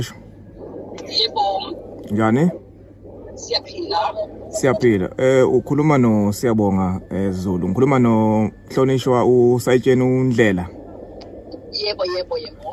Yebo. Njani? Siyaphila. Siyaphila. Ukhuluma no Siyabonga Zulu. Ngikhuluma no Mhlonishwa uSayitsheni uNdlela. Yebo.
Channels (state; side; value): identical; both; correlation 1.00